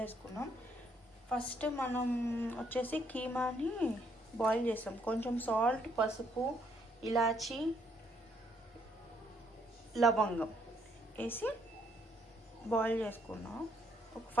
వేసుకున్నాం. ఫస్ట్ మనం వచ్చేసి కీమాని బాయిల్ చేసాం. కొంచెం సాల్ట్, పసుపు, ఇలాచి, లవంగం వేసి బాయిల్ చేసుకున్నాం. ఒక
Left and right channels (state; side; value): normal; both; correlation 0.70